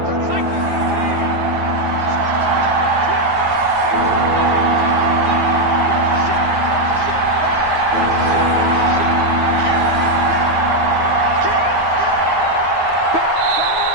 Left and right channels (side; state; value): left; late; 9.4 ms